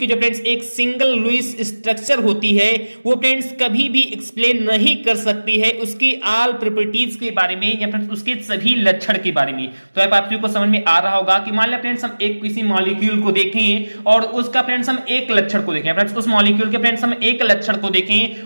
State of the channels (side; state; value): both; inverted; correlation -1.00